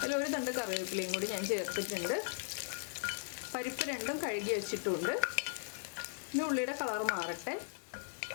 അതിൽ ഒരു തണ്ട് കറിവേപ്പിലയും കൂടി ഞാൻ ചേർത്തിട്ടുണ്ട്. പരിപ്പ് 2ഉം കഴുകി വെച്ചിട്ടുണ്ട്. ഇനി ഉള്ളിയുടെ കളർ മാറട്ടെ.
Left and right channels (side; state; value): right; silent; 53 dB below the other